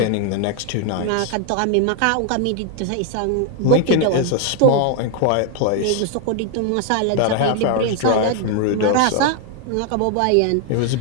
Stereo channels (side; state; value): both; different; correlation 0.00